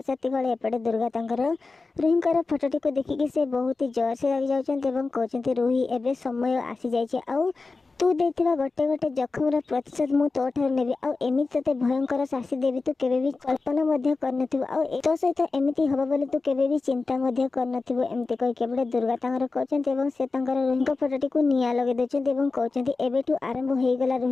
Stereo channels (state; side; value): quieter; right; 3.9 dB